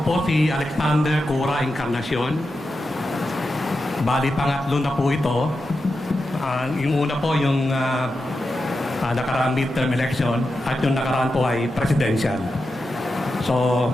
po si Alexander Cura Encarnacion. Bali, pangatlo na po ito. Yung una po yung nakaraang midterm election at yung nakaraan po ay presidential. So,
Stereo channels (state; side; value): normal; both; correlation 0.89